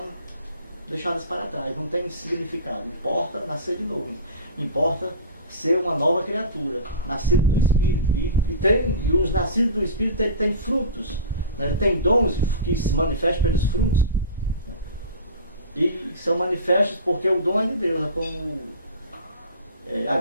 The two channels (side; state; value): both; inverted; correlation -0.34